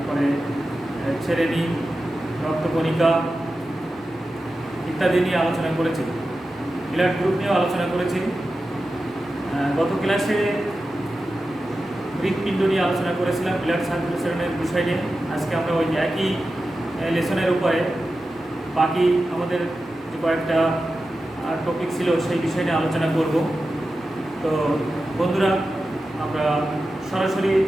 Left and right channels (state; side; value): normal; both; correlation 0.92